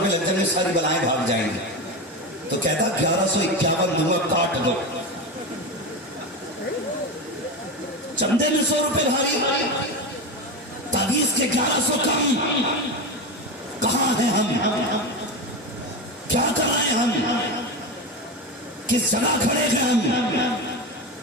لگ جائیں گے، ساری بلائیں بھاگ جائیں گی. تو کہتا 1151 دوں گا، کاٹ دو. چندے میں 100 روپے بھاری، تعویذ کے 1100 کم. کہاں ہیں ہم؟ کیا کر رہے ہیں ہم؟ کس جگہ کھڑے ہیں ہم؟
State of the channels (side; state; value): both; normal; correlation 0.20